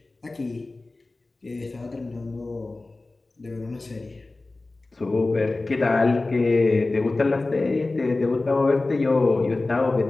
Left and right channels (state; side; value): quieter; right; 3.2 dB